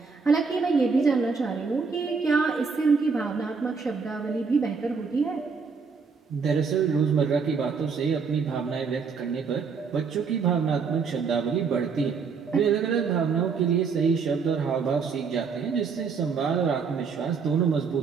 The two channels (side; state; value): left; quieter; 5.3 dB